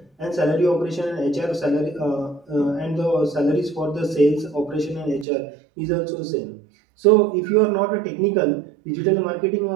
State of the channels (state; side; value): drops out; left; at 5.2 s